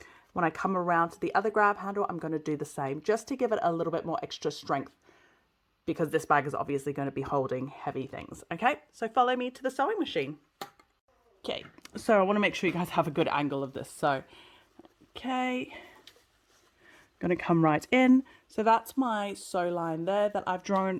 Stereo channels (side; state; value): both; identical; correlation 1.00